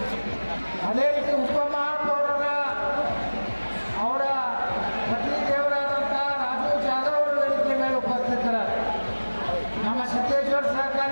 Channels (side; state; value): both; inverted; correlation -1.00